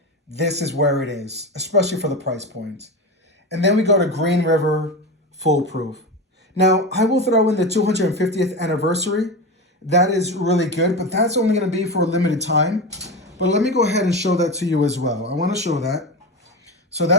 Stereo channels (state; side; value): normal; both; correlation 0.22